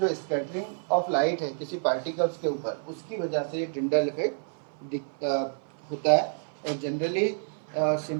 स्कैटरिंग ऑफ लाइट है किसी पार्टिकल्स के ऊपर, उसकी वजह से ये टिंडल इफेक्ट होता है। और जनरली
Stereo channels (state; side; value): silent; left; 59 dB below the other